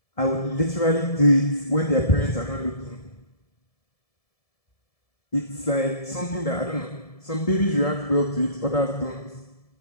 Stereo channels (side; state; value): right; late; 1.7 ms